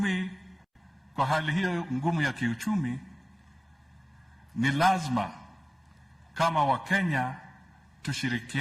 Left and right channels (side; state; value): both; identical; correlation 1.00